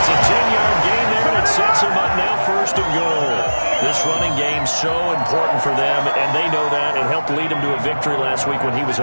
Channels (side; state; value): both; inverted; correlation -1.00